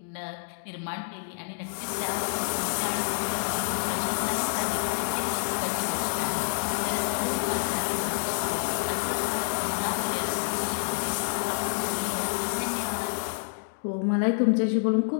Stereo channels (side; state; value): right; silent; digital silence